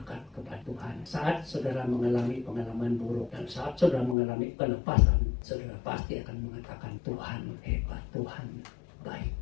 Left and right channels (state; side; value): drops out; right; at 4.2 s